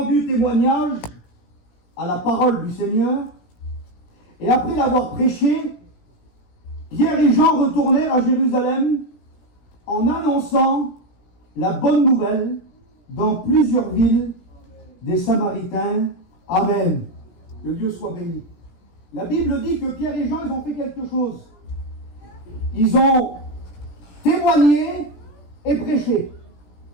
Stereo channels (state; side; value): late; right; 17 ms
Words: témoignage à la parole du Seigneur et après l'avoir prêché, Pierre et Jean retournèrent à Jérusalem en annonçant la bonne nouvelle dans plusieurs villes des Samaritains. Amen. Que Dieu soit béni. La Bible dit que Pierre et Jean, ils ont fait quelque chose. Ils ont témoigné et prêché